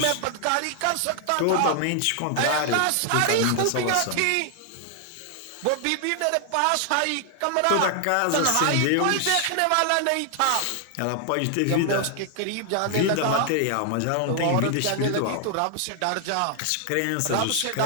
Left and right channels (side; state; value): both; different; correlation 0.00